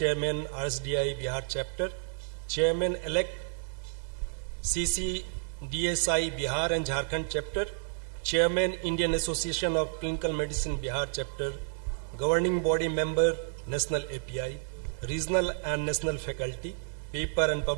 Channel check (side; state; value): left; silent; 57 dB below the other